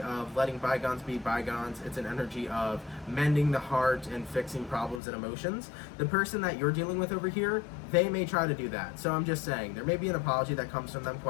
letting bygones be bygones? It's an energy of mending the heart and fixing problems and emotions. The person that you're dealing with over here, they may try to do that. So I'm just saying, there may be an apology that comes from them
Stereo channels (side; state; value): right; drops out; at 5.0 s